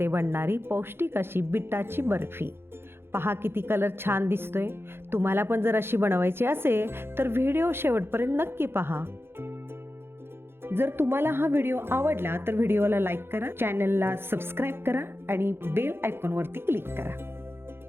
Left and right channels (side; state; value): left; late; 0.11 ms